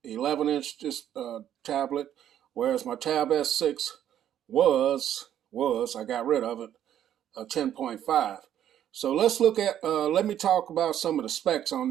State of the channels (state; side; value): quieter; left; 10.7 dB